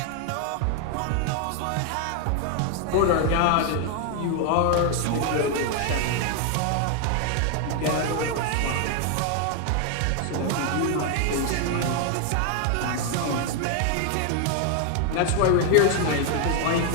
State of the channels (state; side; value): different; both; correlation 0.00